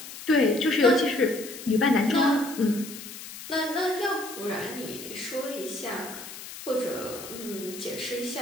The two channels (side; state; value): left; noise; hiss, 12 dB below the sound